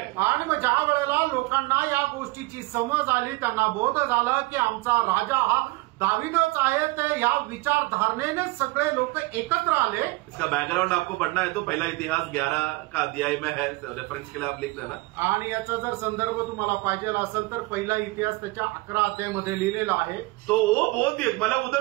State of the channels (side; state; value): left; quieter; 22.7 dB